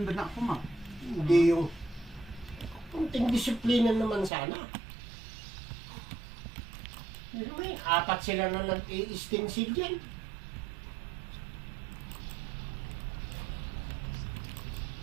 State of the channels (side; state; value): left; drops out; at 4.3 s